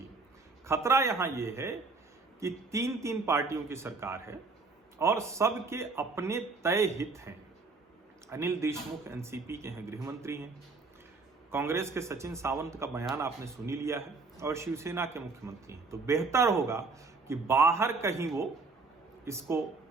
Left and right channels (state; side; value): quieter; left; 4.0 dB